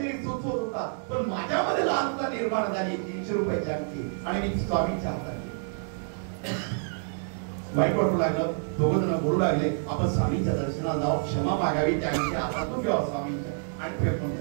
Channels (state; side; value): silent; left; digital silence